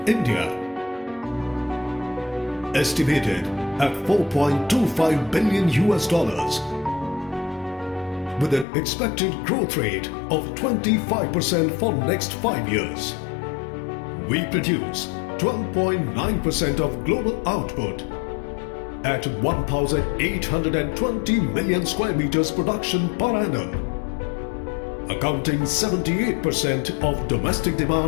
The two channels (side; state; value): right; drops out; at 8.7 s